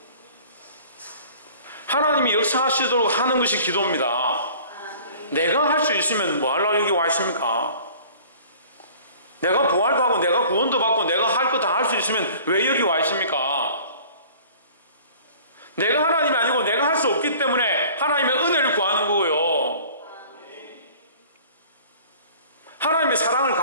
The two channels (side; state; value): both; inverted; correlation -0.48